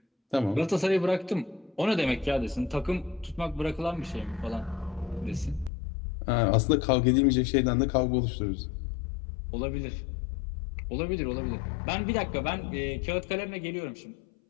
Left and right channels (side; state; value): right; drops out; at 5.7 s